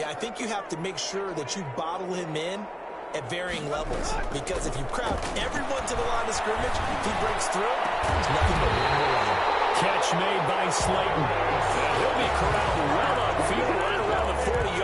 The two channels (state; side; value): identical; both; correlation 1.00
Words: I think you have to make sure that you bottle him in at varying levels, because if you crowd everyone to the line of scrimmage, if he breaks through, there's nothing but room to run. catch made by Slayton. And he'll be corralled well upfield right around the